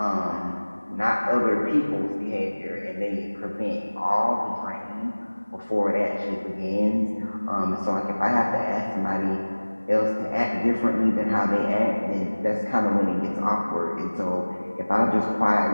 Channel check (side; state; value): both; inverted; correlation -1.00